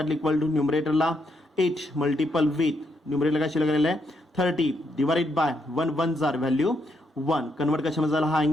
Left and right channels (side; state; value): both; normal; correlation 0.78